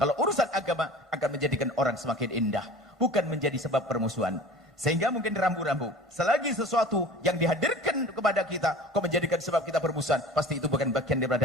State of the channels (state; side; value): normal; both; correlation 0.41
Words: urusan agama akan menjadikan orang semakin indah, bukan menjadi sebab permusuhan. Sehingga mungkin rambu-rambu, selagi sesuatu yang dihadirkan kepada kita kok menjadikan sebab kita bermusuhan, pasti itu bukan bagian